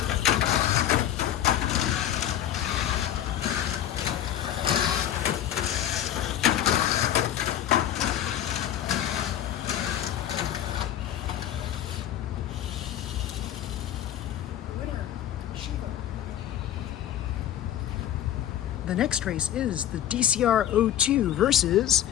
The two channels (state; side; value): quieter; right; 11.3 dB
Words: The next race is the DCR-02 versus